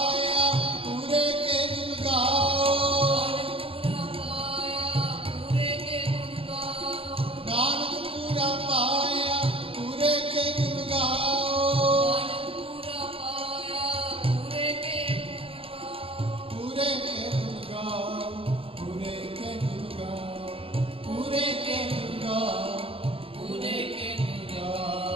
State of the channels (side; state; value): left; late; 0.27 ms